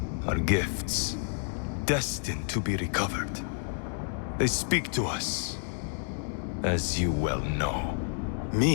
are gifts, destined to be recovered. They speak to us, as you well know.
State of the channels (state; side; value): silent; right; digital silence